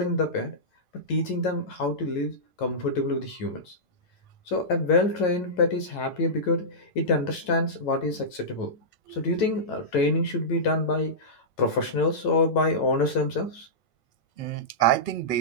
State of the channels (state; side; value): late; right; 9.0 ms